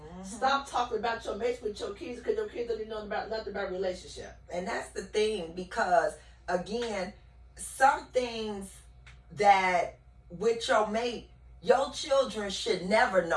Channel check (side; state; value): both; identical; correlation 1.00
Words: Stop talking about your mates with your kids because your kids don't even know about nothing about relationship. And that's the thing because. Again, some things that with your mate, your children should never